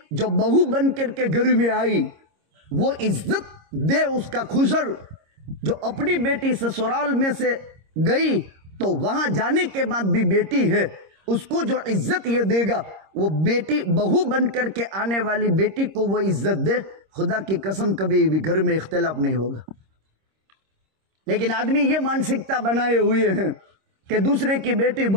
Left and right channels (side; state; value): left; late; 26 ms